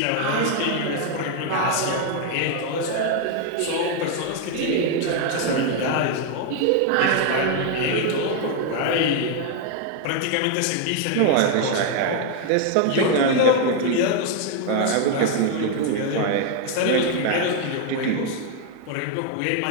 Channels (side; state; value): both; different; correlation 0.00